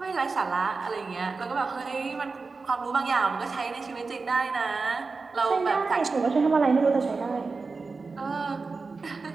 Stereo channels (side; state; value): left; quieter; 4.2 dB